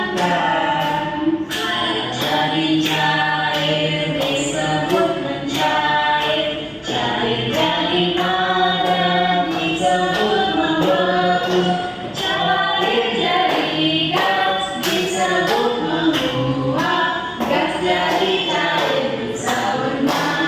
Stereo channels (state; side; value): identical; both; correlation 1.00